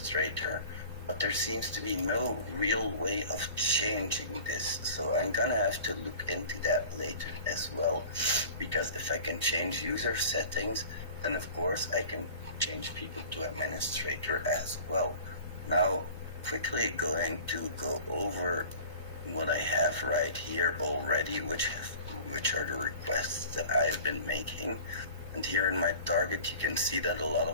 but there seems to be no real way of changing this. So I'm gonna have to look into that later as well, because if I can change user settings, then of course I can change people to administrator as well. Now, quickly going to go over what I have right here already, which are the requests that I've been making. And here in my target, you can see that a lot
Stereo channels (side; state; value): both; inverted; correlation -0.42